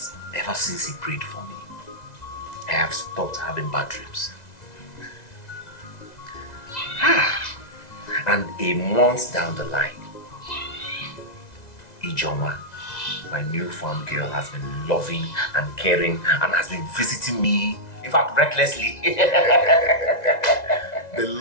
ever since he prayed for me, I have stopped having bad dreams? And a month down the line, Ijoma, my newfound girl, has been loving and caring and has been visiting me, in fact, recklessly. The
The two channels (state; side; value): late; right; 2.0 ms